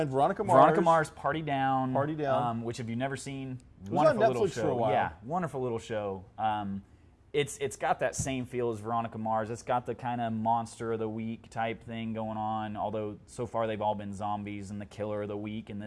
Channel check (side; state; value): both; identical; correlation 1.00